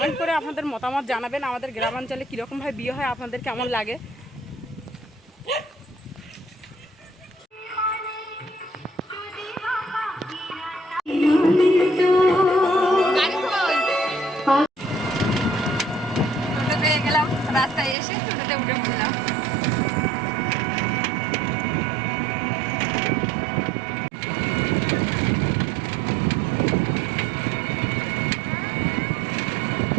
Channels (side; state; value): left; drops out; at 17.9 s